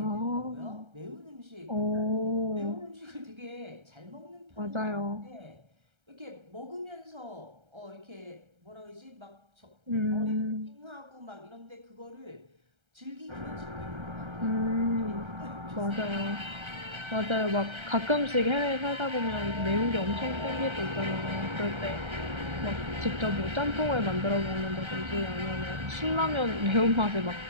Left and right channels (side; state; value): left; late; 1.3 ms